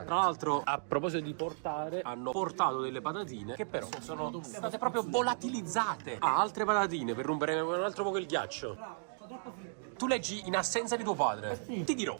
Tra l'altro, a proposito di portare, hanno portato delle patatine che però sono state proprio volatilizzate. Altre patatine per rompere un altro poco il ghiaccio. Tu leggi in assenza di tuo padre. Ti dirò.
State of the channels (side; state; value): left; silent; digital silence